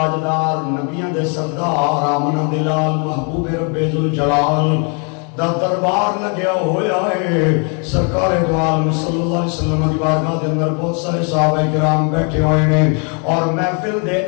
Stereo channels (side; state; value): right; quieter; 37.3 dB